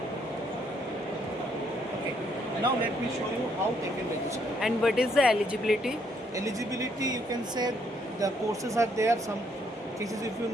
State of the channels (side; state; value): both; normal; correlation 0.70